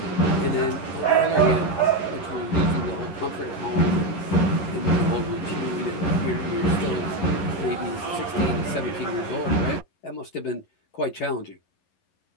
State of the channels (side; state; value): right; late; 11 ms